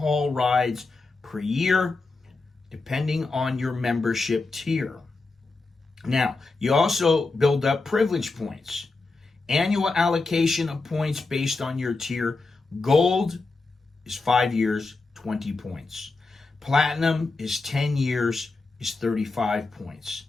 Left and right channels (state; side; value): quieter; right; 3.6 dB